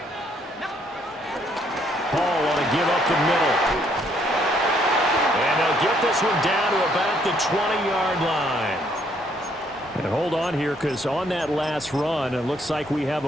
Paul want to give up the middle. And they'll get this one down to about the 20-yard line. And hold on here, because on that last run, it looks like we have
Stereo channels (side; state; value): both; normal; correlation 0.68